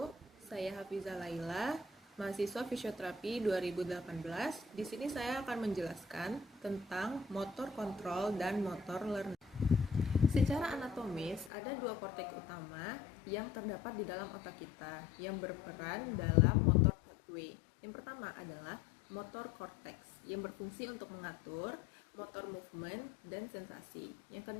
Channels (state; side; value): drops out; right; at 11.5 s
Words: Saya Hafizah Laila, mahasiswa fisioterapi 2018. Di sini saya akan menjelaskan tentang motor kontrol dan motor learning. Secara anatomis, ada dua korteks utama yang terdapat di dalam otak kita yang berperan dalam motor pathway. Yang pertama adalah motor korteks yang berfungsi untuk mengatur motor movement dan sensasi. Yang